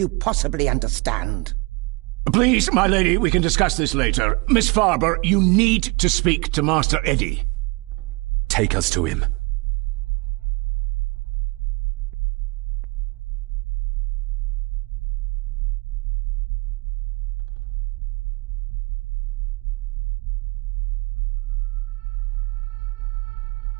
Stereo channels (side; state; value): left; quieter; 26.3 dB